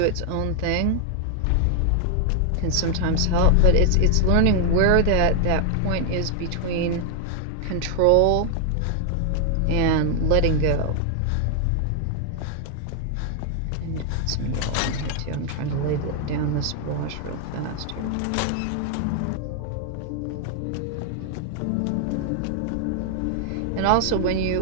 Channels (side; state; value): both; different; correlation 0.00